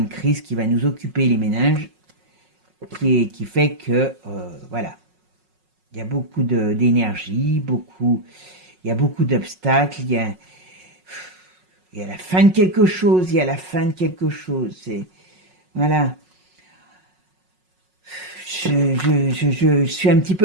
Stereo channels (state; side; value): late; left; 5.4 ms